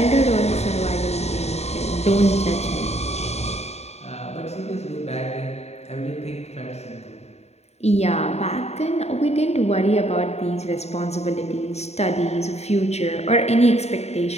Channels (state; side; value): late; right; 0.31 ms